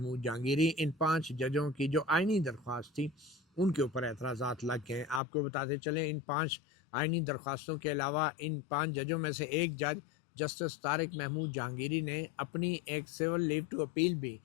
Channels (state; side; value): drops out; right; at 5.2 s